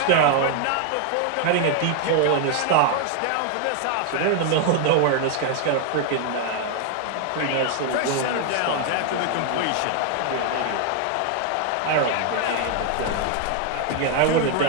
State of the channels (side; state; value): both; different; correlation 0.01